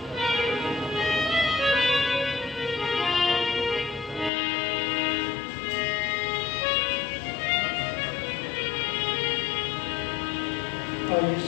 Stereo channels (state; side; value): drops out; right; at 4.3 s